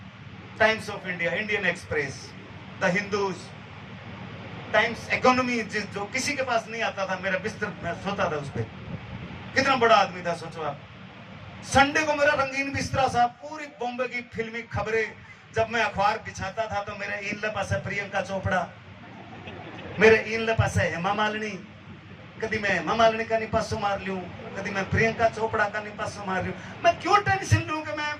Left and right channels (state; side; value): identical; both; correlation 1.00